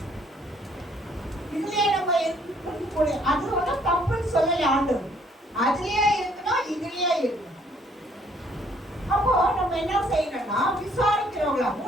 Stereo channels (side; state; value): both; normal; correlation 0.64